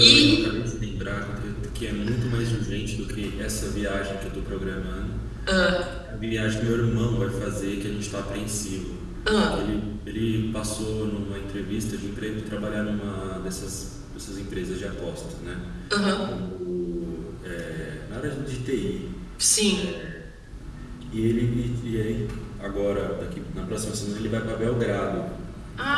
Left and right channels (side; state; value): both; identical; correlation 1.00